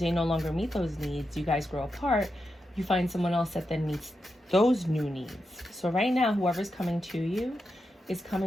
they no longer meet those needs. You guys grow apart. You find someone else that then meets those new needs. So right now, whoever's coming to you is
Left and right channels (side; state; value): both; normal; correlation 0.87